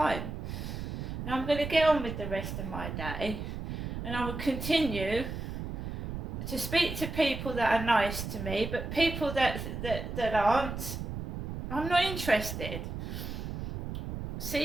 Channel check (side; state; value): right; noise; rumble, 5 dB below the sound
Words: And I'm going to get on with the rest of my day, and I will continue to speak to people that are nice to me, but people that aren't, I'm not interested.